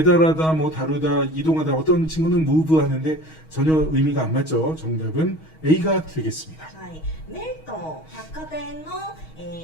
뭐 다루다, 이동하다. 어떤 친구는 move 하는데 전혀 의미가 안 맞죠. 정답은 A가 되겠습니다. はい、メルトン百貨店の、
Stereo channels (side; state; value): right; late; 6.3 ms